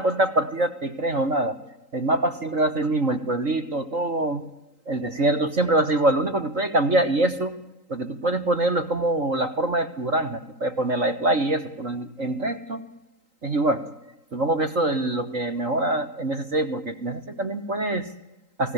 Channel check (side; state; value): left; late; 3.8 ms